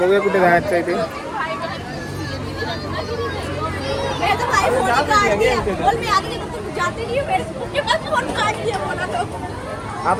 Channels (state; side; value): identical; both; correlation 1.00